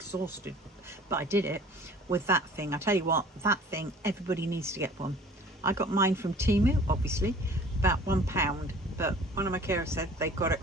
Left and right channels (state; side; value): normal; both; correlation 0.48